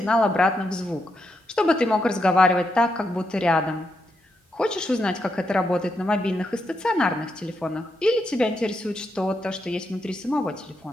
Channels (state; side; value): normal; both; correlation 0.82